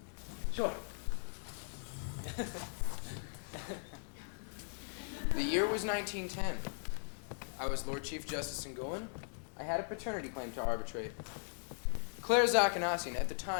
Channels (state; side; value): silent; right; digital silence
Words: Sure. The year was 1910. I was Lord Chief Justice in Gulin. I had a paternity claim to arbitrate. Clara Zakanassian, at the